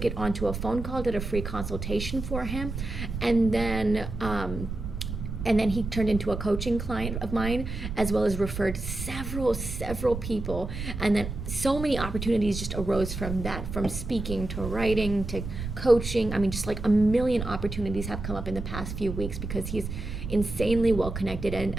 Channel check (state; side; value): noise; right; rumble, 6 dB below the sound